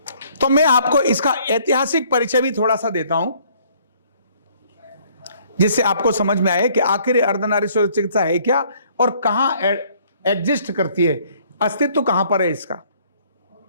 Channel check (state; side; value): inverted; both; correlation -0.61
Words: तो मैं आपको इसका ऐतिहासिक परिचय भी थोड़ा सा देता हूं, जिससे आपको समझ में आए कि आखिर अर्धनारीश्वर चिकित्सा है क्या और कहां एग्जिस्ट करती है, अस्तित्व कहां पर है इसका।